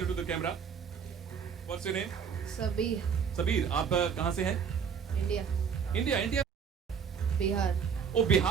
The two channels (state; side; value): quieter; left; 6.9 dB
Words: the camera. What's your name? Sabir. आप कहाँ से हैं? इंडिया. बिहार. ओ